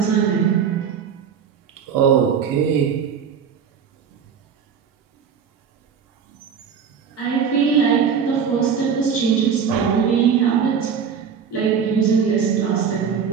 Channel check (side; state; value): left; quieter; 7.0 dB